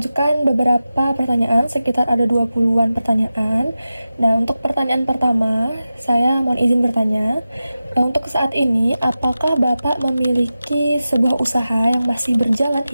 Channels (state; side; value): inverted; both; correlation -0.93